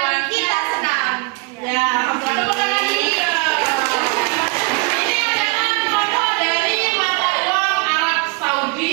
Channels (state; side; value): quieter; left; 29.0 dB